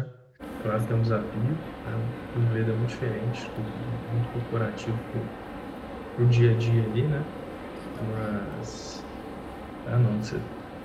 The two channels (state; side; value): identical; both; correlation 1.00